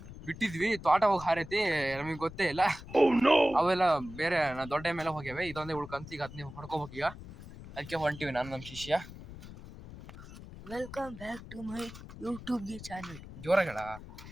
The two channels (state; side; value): noise; left; rumble, 15 dB below the sound